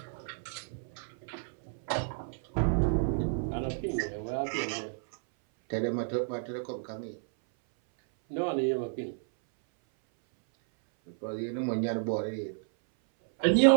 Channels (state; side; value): silent; left; 57 dB below the other